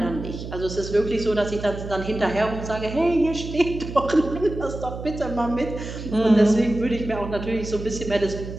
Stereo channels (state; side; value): noise; right; hum, 9 dB below the sound